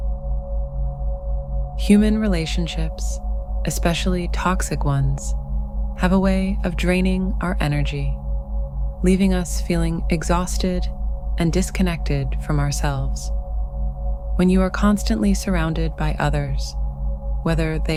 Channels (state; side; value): identical; both; correlation 1.00